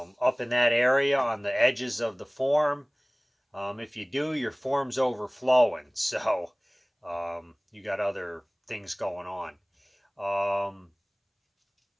in that area on the edges of the form. If you do, your form's overflowing. So you got other things going on.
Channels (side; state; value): both; identical; correlation 1.00